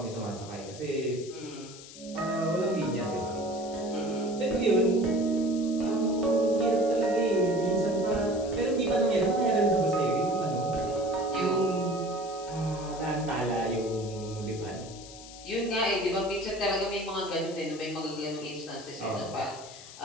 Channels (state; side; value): noise; left; hiss, 16 dB below the sound